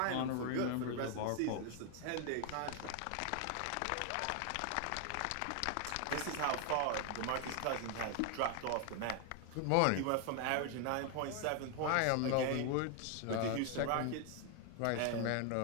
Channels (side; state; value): both; different; correlation 0.01